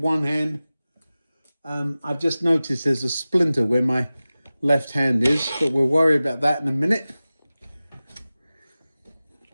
one hand. I've just noticed there's a splinter where my left hand is, but we'll worry about that in a minute.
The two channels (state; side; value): inverted; both; correlation -0.97